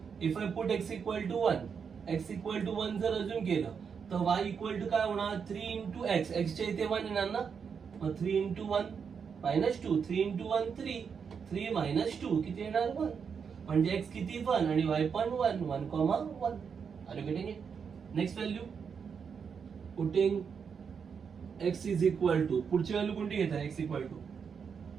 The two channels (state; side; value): quieter; left; 6.4 dB